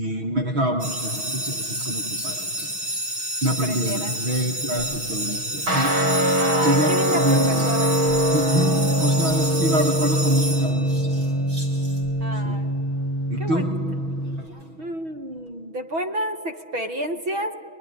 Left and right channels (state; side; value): late; left; 6.2 ms